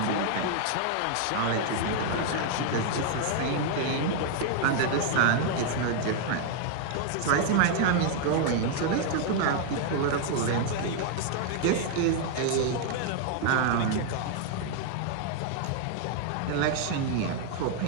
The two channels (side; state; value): both; different; correlation 0.00